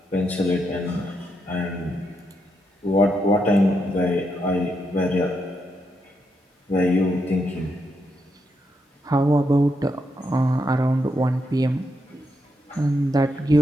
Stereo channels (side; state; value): both; normal; correlation 0.81